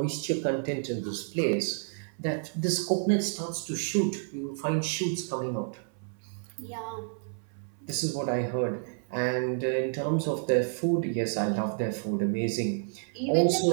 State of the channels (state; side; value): silent; left; 58 dB below the other